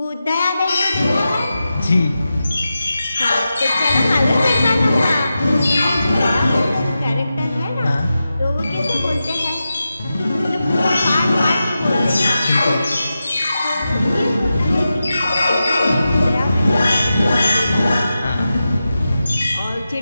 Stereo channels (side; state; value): both; inverted; correlation -0.91